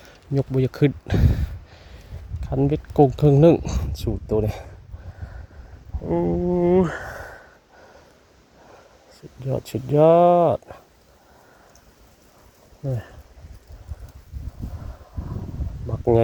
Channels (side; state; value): both; identical; correlation 1.00